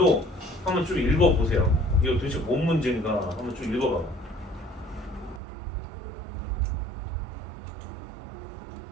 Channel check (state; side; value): drops out; left; at 5.4 s